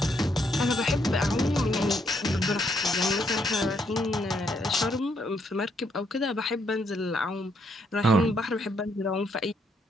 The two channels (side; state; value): both; normal; correlation 0.73